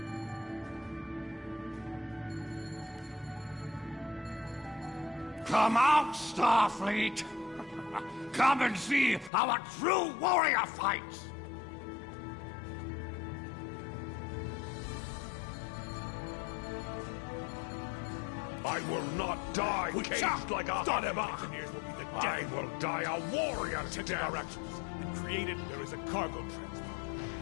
Come out, Starfleet! Come and see how a true warrior fights! I will not die caged like a Hadeva! I will die a warrior to death! Our actions and created there is a cargo transport.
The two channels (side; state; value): right; drops out; at 9.3 s